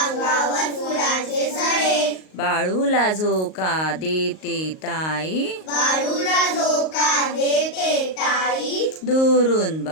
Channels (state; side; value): late; right; 38 ms